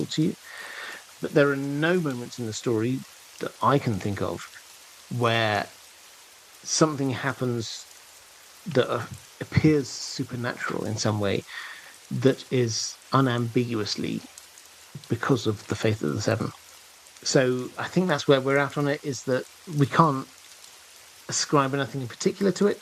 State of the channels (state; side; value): identical; both; correlation 1.00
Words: to you. But there are no moments in the story that I can think of where something happens that appears supernatural in some way, that is unambiguously because of the faith of the seven. So I think that's where we're at on it, is that we can't ascribe anything in particular to